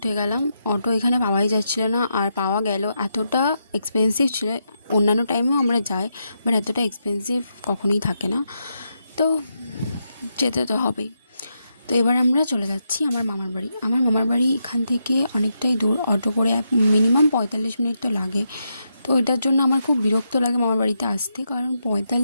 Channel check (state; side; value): inverted; both; correlation -0.83